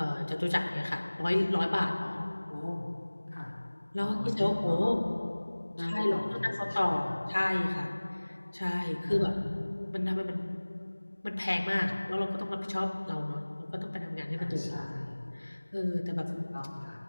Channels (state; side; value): inverted; both; correlation -1.00